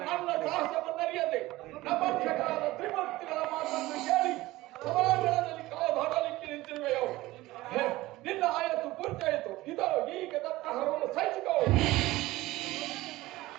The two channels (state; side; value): quieter; left; 18.2 dB